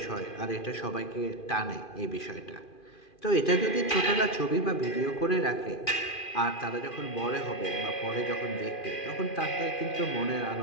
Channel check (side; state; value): right; late; 2.4 ms